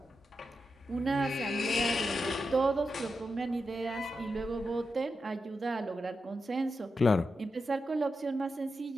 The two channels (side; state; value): both; normal; correlation 0.88